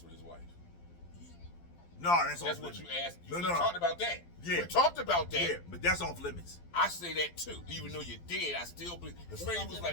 with his wife? No, that's That's off what limits. you asked. No, We no. talked about that. Yeah. We talked about that. Yeah, but that's off limits. I say that too. Even though you're dead, I still believe. Because Freddie was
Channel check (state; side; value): late; right; 12 ms